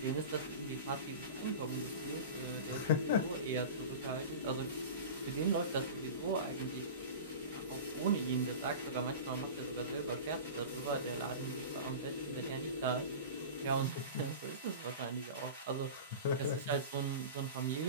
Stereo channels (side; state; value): both; inverted; correlation -0.32